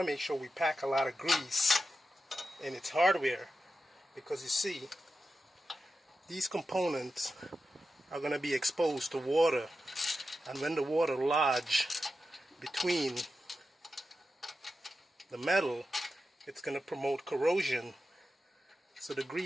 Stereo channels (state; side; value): normal; both; correlation 0.91